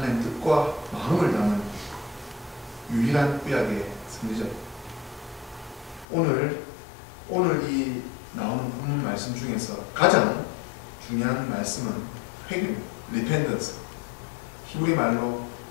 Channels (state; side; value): drops out; right; at 6.1 s